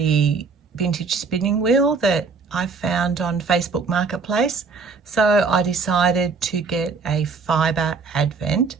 vintage spinning wheel that I found on Facebook Marketplace. So I decided to get a fibre advent.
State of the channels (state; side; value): quieter; left; 4.8 dB